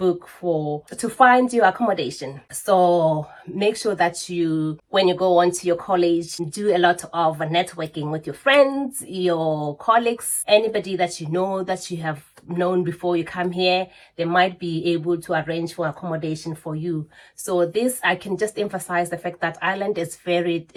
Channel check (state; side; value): identical; both; correlation 1.00